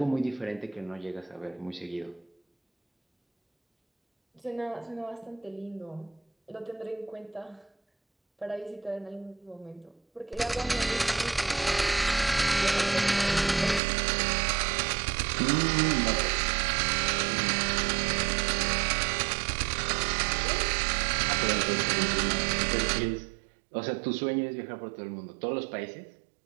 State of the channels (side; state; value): left; drops out; at 13.8 s